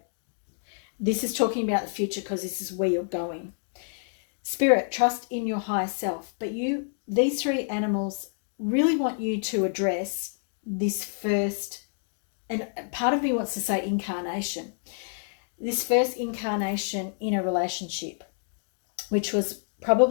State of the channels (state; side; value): silent; right; digital silence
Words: this is talking about the future because this is where you're going. Spirit, trust in your higher self. But these 3 animals really want you to address this first, and part of me wants to say incarnation. This first incarnation in a relationship, which was